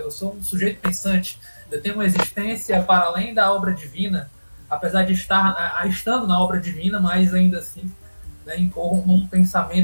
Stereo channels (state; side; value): inverted; both; correlation -1.00